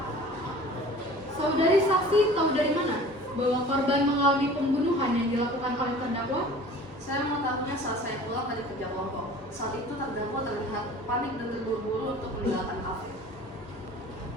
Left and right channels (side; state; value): both; normal; correlation 0.44